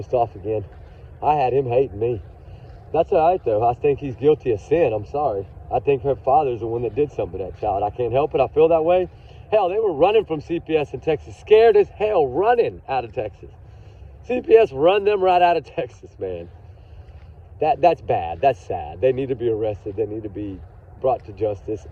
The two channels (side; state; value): both; identical; correlation 1.00